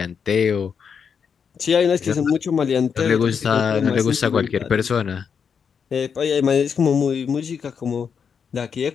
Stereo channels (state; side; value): quieter; right; 6.7 dB